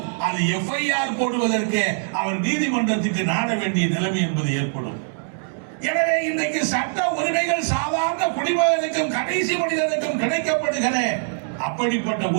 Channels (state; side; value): silent; left; digital silence